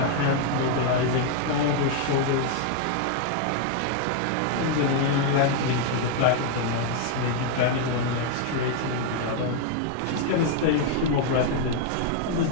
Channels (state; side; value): different; both; correlation 0.00